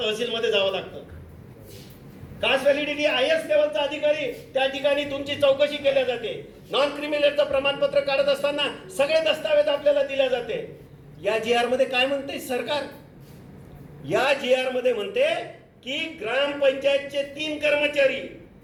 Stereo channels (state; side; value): identical; both; correlation 1.00